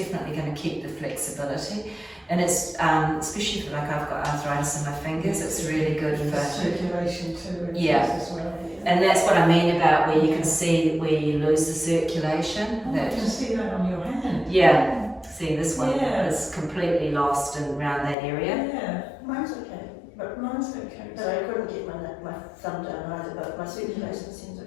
going to keep the flexibility. And it's, especially for, like, I've got arthritis in my fingers, it's really good for circulation too. Yeah. As well, yeah. And that's what I mean about where you can see where you lose the circulation. Oh, I can see that on your hand. Yeah. See, this one Yeah. is completely lost and around that area. Yeah, mine's okay. But mine's okay. But I couldn't get my thumb down either, but my circulation seems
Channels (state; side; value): drops out; right; at 18.2 s